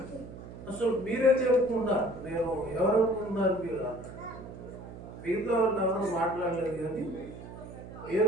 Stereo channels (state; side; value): noise; right; hum, 13 dB below the sound